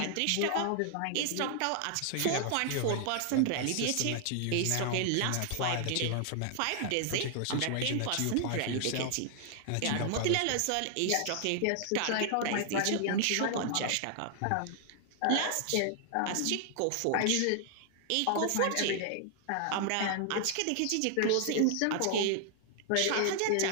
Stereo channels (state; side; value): different; both; correlation 0.00